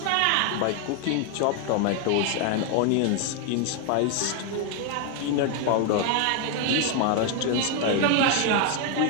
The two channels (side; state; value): both; different; correlation 0.01